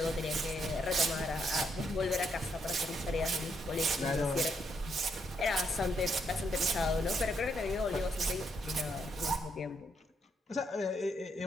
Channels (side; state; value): both; normal; correlation 0.76